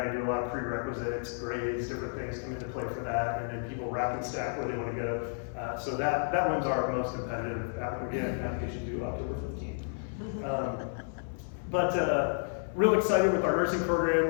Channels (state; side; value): silent; right; 57 dB below the other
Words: to do a lot of prerequisites, grades, different things come into play for that, and then people rack and stack where they want to go. So that one's our most competitive. Again, application due October 15th. But real excited with our nursing